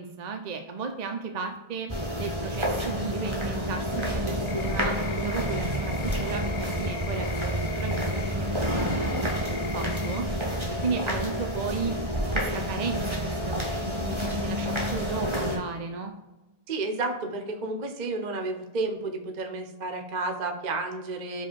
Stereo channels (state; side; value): late; left; 1.3 ms